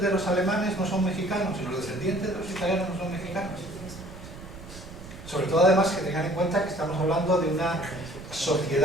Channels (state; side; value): noise; right; rumble, 14 dB below the sound